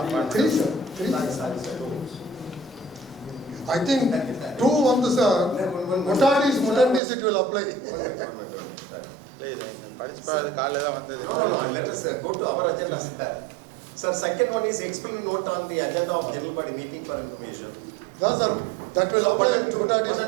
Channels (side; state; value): left; drops out; at 7.0 s